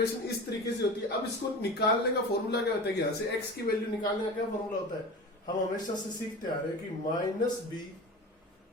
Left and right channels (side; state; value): both; normal; correlation 0.33